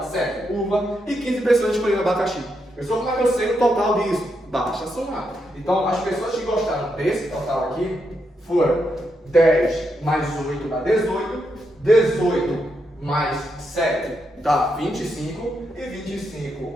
7 uva e 15 pessoas escolheram abacaxi. Pessoal, como é que eu sei o total disso? Basta somar. Então, as pessoas que gostaram desse total aqui foram 10 mais 8 dá 18, 18 mais 7 dá 25 e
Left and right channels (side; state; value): both; normal; correlation 0.82